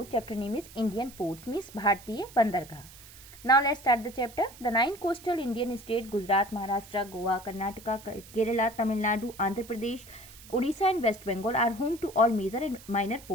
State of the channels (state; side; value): noise; right; hiss, 19 dB below the sound